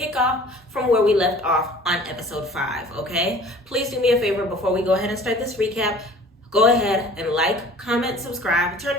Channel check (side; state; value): both; normal; correlation 0.47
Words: off from where we left off on episode 5, okay? Please do me a favor before we go ahead and start this recap. Go ahead and like, comment, subscribe, turn